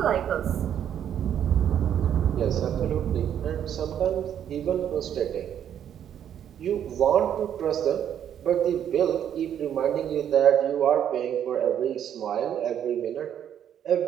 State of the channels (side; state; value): left; quieter; 9.6 dB